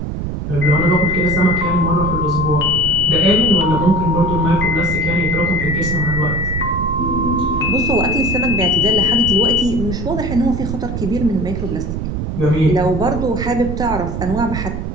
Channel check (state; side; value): noise; right; rumble, 4 dB below the sound